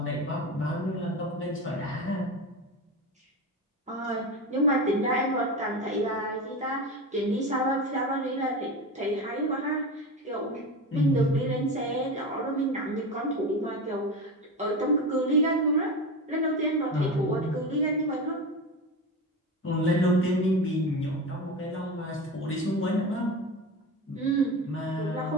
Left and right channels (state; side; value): normal; both; correlation 0.25